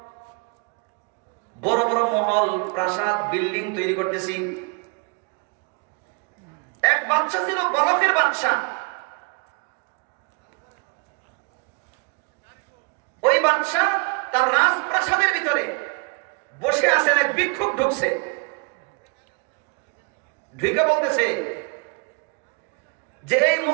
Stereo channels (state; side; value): quieter; left; 32.4 dB